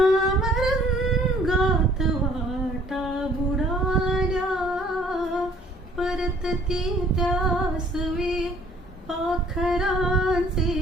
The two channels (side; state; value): both; normal; correlation 0.58